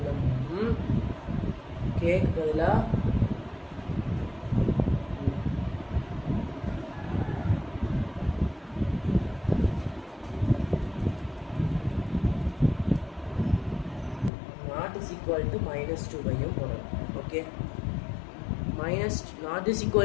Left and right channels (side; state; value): right; drops out; at 14.3 s